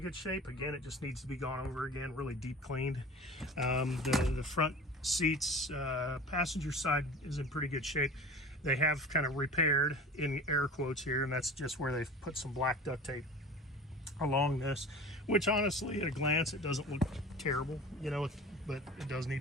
good shape. Again, it just needs to be gone over again, really deep cleaned. The front seats, passenger side is in pretty good shape. They have kind of repaired, in air quotes here, and that's just where they've put some black duct tape along this, which honestly, at a glance, it doesn't look terrible, you know, but it does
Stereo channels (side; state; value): both; normal; correlation 0.37